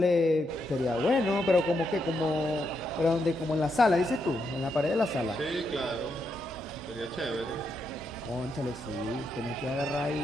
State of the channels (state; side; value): normal; both; correlation 0.81